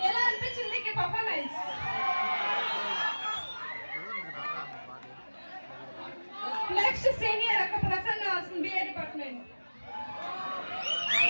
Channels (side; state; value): both; inverted; correlation -1.00